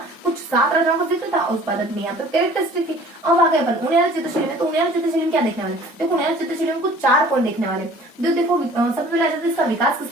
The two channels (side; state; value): both; normal; correlation 0.49